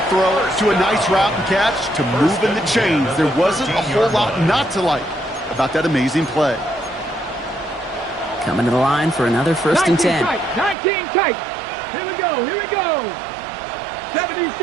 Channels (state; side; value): drops out; left; at 10.8 s